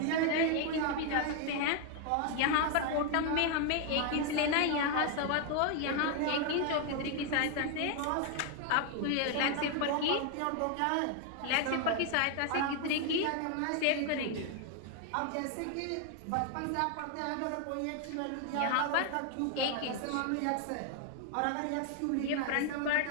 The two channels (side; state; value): both; different; correlation 0.00